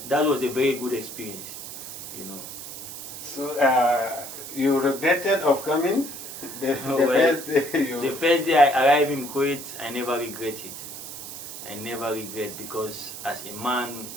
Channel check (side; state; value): right; noise; hiss, 10 dB below the sound